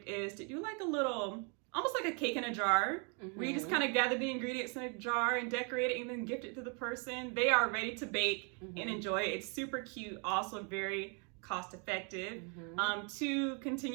is to do like a little, almost like a cake in a jar, where you just kind of gather the ingredients in a jar and decorate it and then gift it to the person. They are ready to bake and enjoy it. It's super cute, also very cost effective, to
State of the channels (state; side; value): quieter; left; 36.8 dB